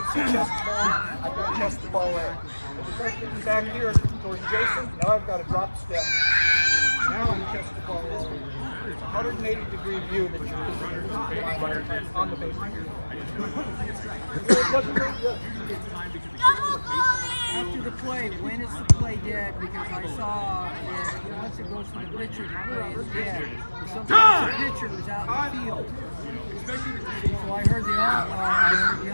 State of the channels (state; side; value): inverted; both; correlation -1.00